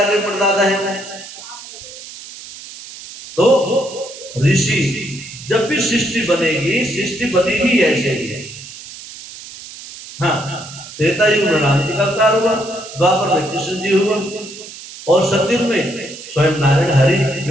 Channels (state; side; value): noise; right; hiss, 15 dB below the sound